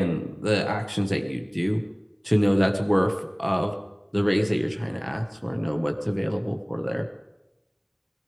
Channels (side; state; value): both; identical; correlation 1.00